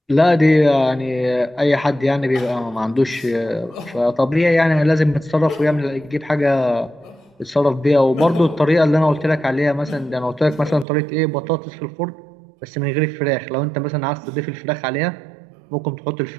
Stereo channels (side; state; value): left; drops out; at 10.9 s